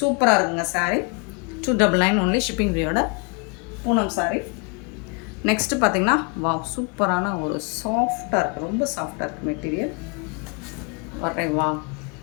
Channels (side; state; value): right; quieter; 35.1 dB